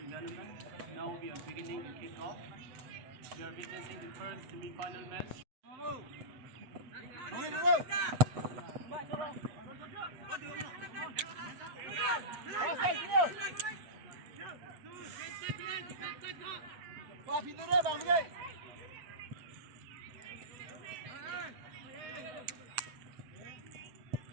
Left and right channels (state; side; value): late; left; 7.8 ms